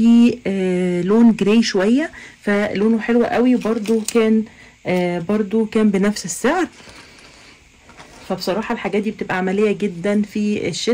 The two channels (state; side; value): identical; both; correlation 1.00